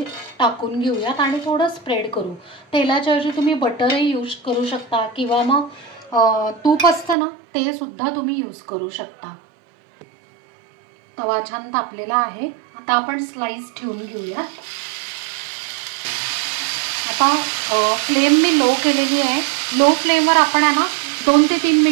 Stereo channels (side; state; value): left; drops out; at 7.2 s